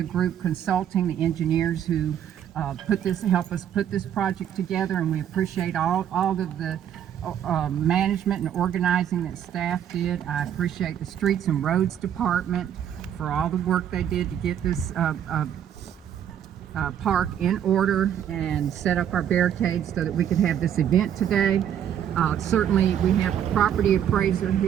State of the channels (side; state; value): left; quieter; 9.7 dB